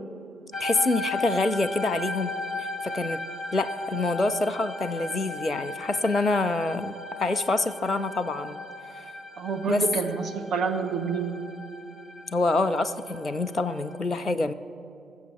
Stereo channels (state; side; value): normal; both; correlation 0.73